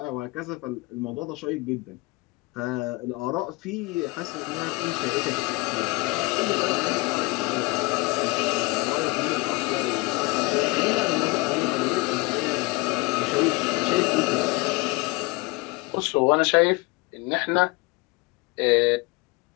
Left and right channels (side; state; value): right; quieter; 24.1 dB